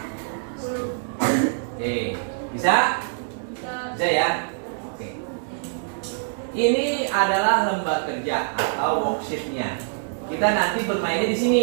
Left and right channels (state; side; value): silent; left; digital silence